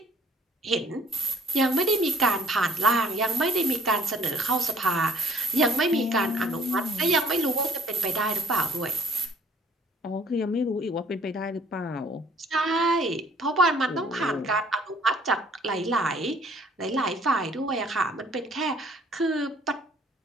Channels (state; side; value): normal; both; correlation 0.59